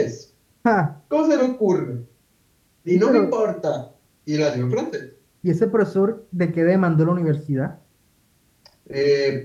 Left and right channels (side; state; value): both; identical; correlation 1.00